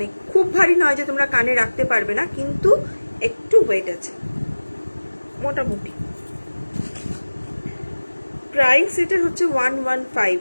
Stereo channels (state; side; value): inverted; both; correlation -1.00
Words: খুব ভারী নয় যে তোমরা কানে রাখতে পারবে না, কিন্তু একটু ওয়েট আছে মোটামুটি। প্রাইস এটা হচ্ছে 115,